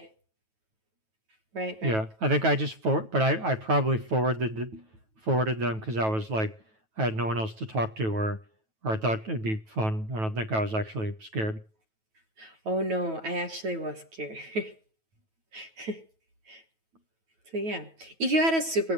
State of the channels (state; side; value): late; left; 9.2 ms